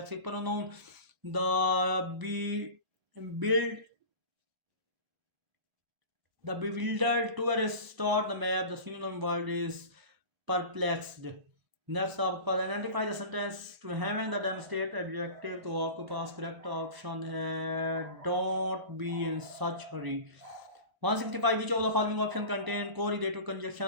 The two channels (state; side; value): late; left; 1.0 ms